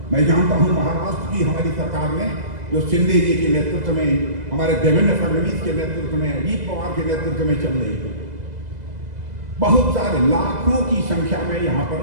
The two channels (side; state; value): left; late; 2.0 ms